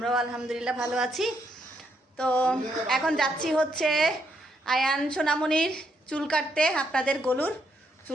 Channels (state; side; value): normal; both; correlation 0.76